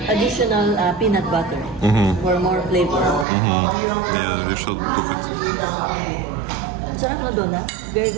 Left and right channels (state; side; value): drops out; left; at 3.2 s